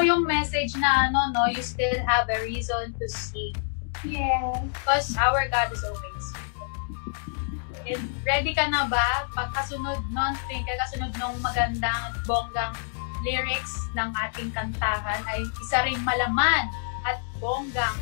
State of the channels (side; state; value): right; silent; digital silence